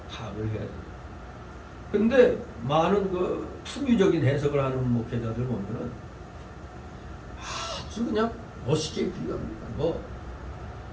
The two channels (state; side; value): identical; both; correlation 1.00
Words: 파악을 해야 돼요. 근데 많은 그 풍유적인 해석을 하는 목회자들 보면은 아주 그냥 멋있게 비유합니다.